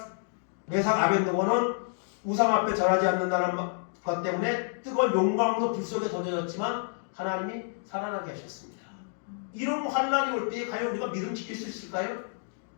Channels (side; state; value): right; silent; digital silence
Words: 메삭, 아벤느고는 우상 앞에 절하지 않는다는 것 때문에 뜨거운 용광로 불 속에 던져졌지만 하나님이 살아나게 하셨습니다. 이런 환난이 올 때에 과연 우리가 믿음 지킬 수 있을까요?